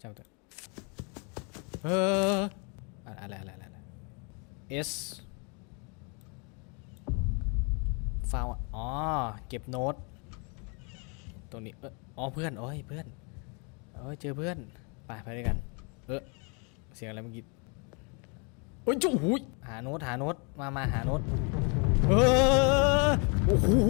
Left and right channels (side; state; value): right; quieter; 34.5 dB